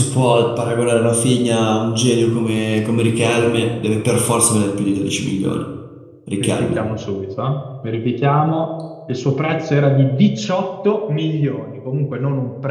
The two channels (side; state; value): both; identical; correlation 1.00